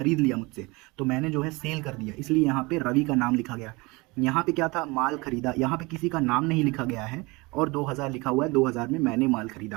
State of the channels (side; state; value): left; quieter; 24.9 dB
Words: लिया मुझसे, तो मैंने जो है सेल कर दिया, इसलिए यहाँ पे रवि का नाम लिखा गया। यहाँ पे क्या था, माल खरीदा, यहाँ पे किसी का नाम नहीं लिखा गया है और 2,000 लिखा हुआ है, 2,000 में मैंने माल